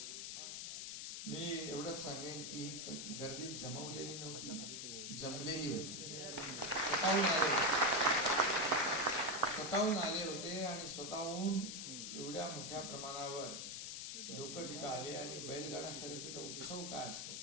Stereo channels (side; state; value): left; noise; hiss, 6 dB below the sound